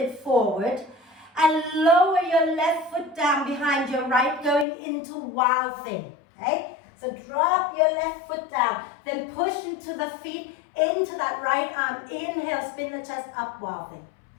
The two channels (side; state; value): right; drops out; at 4.7 s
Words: forward and lower your left foot down behind your right, going into wild thing, okay? So drop your left foot down, then push into the feet, into that right arm. Inhale, spin the chest up, wild thing.